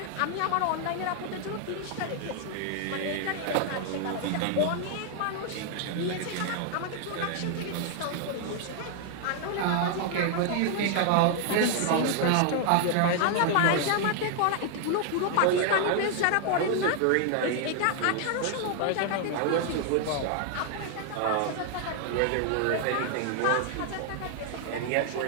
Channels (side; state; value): both; different; correlation 0.00